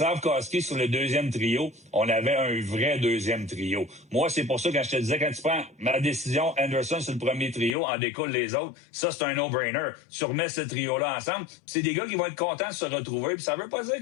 sur le deuxième trio, on avait un vrai deuxième trio. Moi, c'est pour ça, quand je te disais, quand tu prends ma décision, Anderson sur le premier trio, en découle les autres, ça, c'est un no-brainer. Tu remets ce trio-là ensemble. C'est des gars qui vont être contents de se retrouver. Puis ça veut pas dire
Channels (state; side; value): drops out; right; at 7.8 s